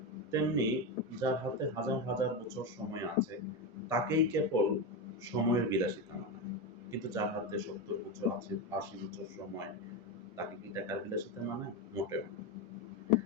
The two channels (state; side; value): normal; both; correlation 0.14